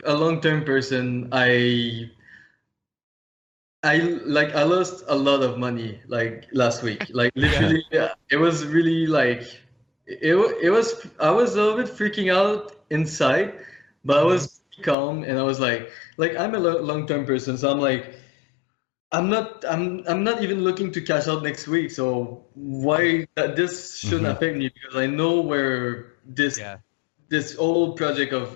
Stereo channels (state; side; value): drops out; right; at 15.0 s